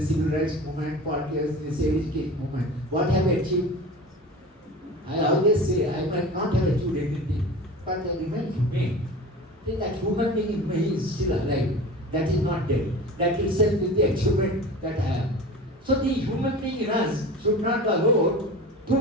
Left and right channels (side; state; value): both; normal; correlation 0.35